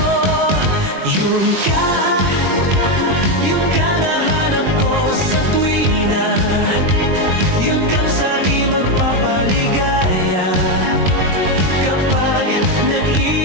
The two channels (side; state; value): left; late; 21 ms